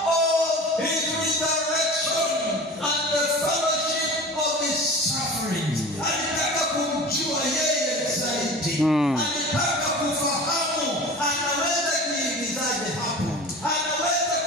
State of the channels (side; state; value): both; normal; correlation 0.36